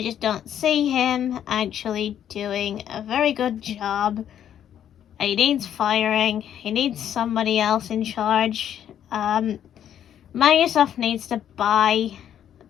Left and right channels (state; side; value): quieter; right; 10.0 dB